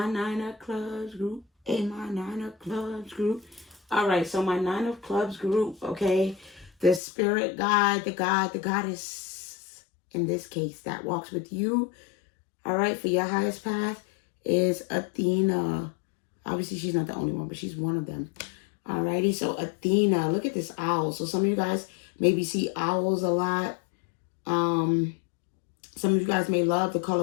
9 of Clubs group, and my 9 of Clubs group. All right, so my 9 of Clubs group, okay, the spirit guide, the goddess, in this case, that walks with you, all right, for your highest path is Athena. Obviously, she's not the only one, but she's one of them. Alrighty, so Athena, look at this owl. So some of you guys maybe see owls a lot. Some of you guys may love the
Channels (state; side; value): drops out; right; at 7.0 s